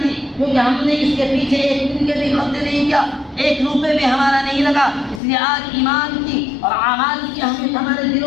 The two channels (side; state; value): right; drops out; at 5.2 s